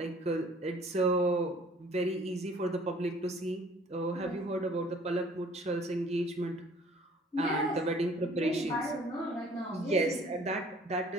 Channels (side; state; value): both; normal; correlation 0.54